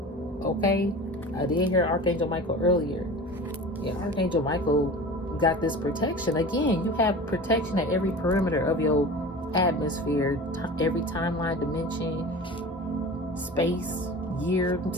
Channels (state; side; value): normal; both; correlation 0.35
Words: Okay? I did hear Archangel Michael earlier. Yeah, Archangel Michael got this protection. Again, you have protection at every perimeter of your atmosphere, every timeline, dimension, space, year,